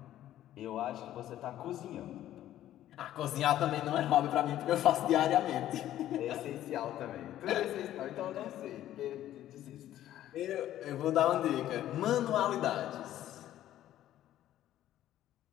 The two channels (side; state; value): right; quieter; 12.7 dB